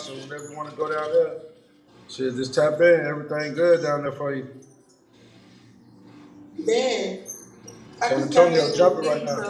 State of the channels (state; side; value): identical; both; correlation 1.00